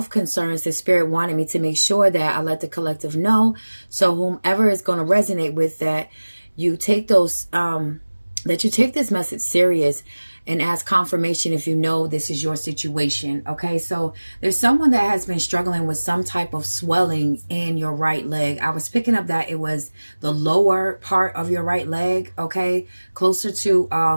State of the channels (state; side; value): inverted; both; correlation -1.00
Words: concerns that Spirit wanted me to make sure that I let the collective know. So whomever is going to resonate with that, you take those that you take this message serious and ask confirmation if you know this is your situation. Okay, so there's someone that has been struggling with some type of swelling in your right leg. I was picking up that it was the lower part of your right leg, okay, closer to